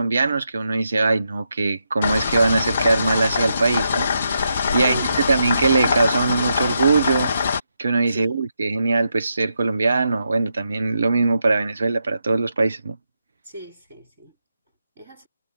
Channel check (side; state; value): both; inverted; correlation -0.83